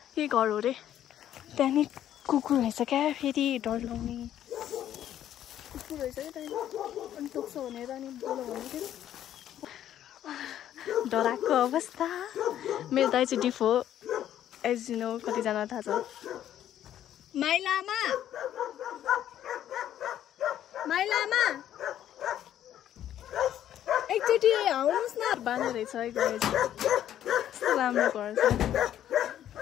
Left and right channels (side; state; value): right; quieter; 11.3 dB